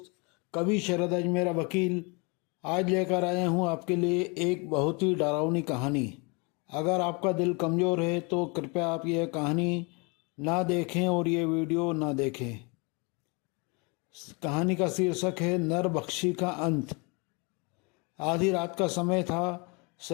कवि शरद अजमेरा वकील आज लेकर आया हूँ आपके लिए एक बहुत ही डरावनी कहानी। अगर आपका दिल कमज़ोर है तो कृपया आप यह कहानी ना देखें और ये वीडियो ना देखें। कहानी का शीर्षक है नरबख्शी का अंत। आधी रात का समय था।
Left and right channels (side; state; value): right; quieter; 30.5 dB